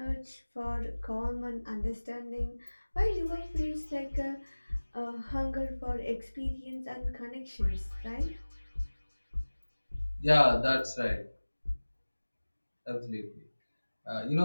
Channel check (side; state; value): both; inverted; correlation -1.00